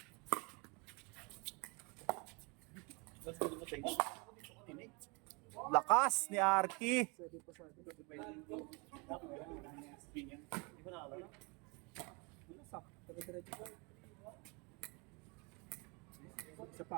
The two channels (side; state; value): left; quieter; 30.4 dB